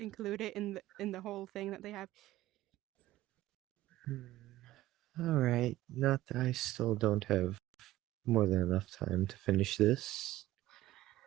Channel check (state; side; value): quieter; left; 15.8 dB